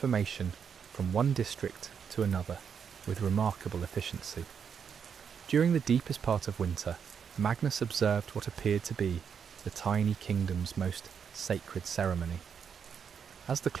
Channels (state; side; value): quieter; left; 7.1 dB